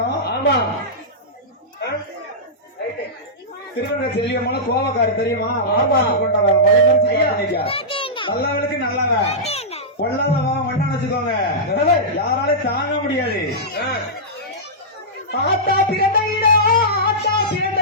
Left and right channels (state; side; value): normal; both; correlation -0.13